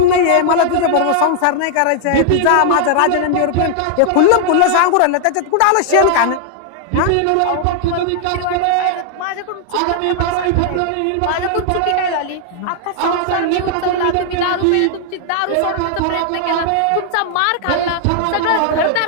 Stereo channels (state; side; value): different; both; correlation 0.00